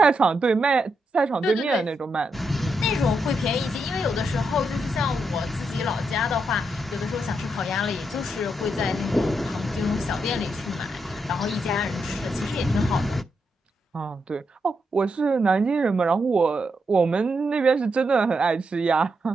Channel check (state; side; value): normal; both; correlation 0.82